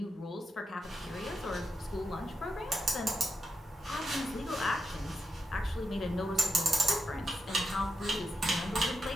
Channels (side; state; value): both; normal; correlation 0.83